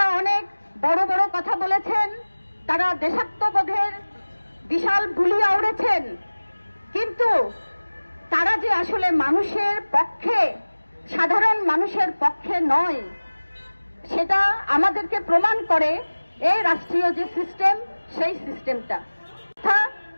অনেক বড় বড় কথা বলেছেন, তারা দেশাত্মবোধের বিশাল বুলি আওড়েছেন, কিন্তু তারা যে আসলে মানুষের পক্ষে, সাধারণ মানুষের পক্ষে নয়, সেটা আমাদেরকে প্রমাণ করে এই রাষ্ট্রীয় যে সিস্টেম, সেই সিস্টেমটা,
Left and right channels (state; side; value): inverted; both; correlation -1.00